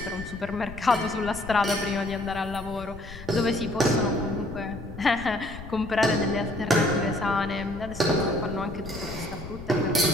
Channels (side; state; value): left; noise; rumble, 13 dB below the sound